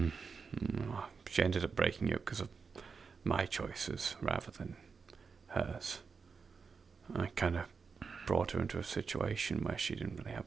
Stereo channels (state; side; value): quieter; left; 5.3 dB